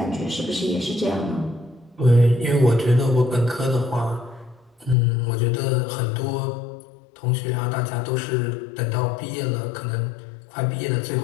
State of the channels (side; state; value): right; drops out; at 5.0 s